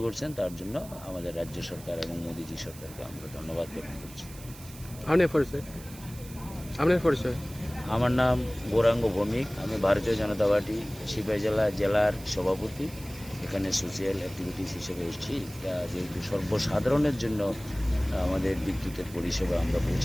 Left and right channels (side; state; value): right; noise; hiss, 18 dB below the sound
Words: করছেন তার জন্য আমাদের রাজ্য সরকার এবং মোদীজি সরকারকে আমরা ধন্যবাদ জ্ঞাপন করছি। আপনার পরিচয়? আমার নাম গৌরাঙ্গ ভৌমিক, আমি ভারতীয় জনতা পার্টি সিপাহী জেলার সভাপতি। এখানে সোশিয়াল অ্যাক্টিভিটিস হিসেবে এসেছি। যেহেতু সর্বসাধারণের জন্য আমাদের বিদ্যুতের পরিষেবা আমরা